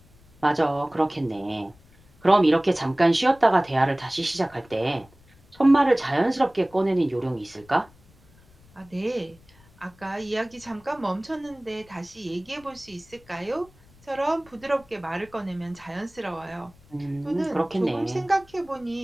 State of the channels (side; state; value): left; noise; rumble, 27 dB below the sound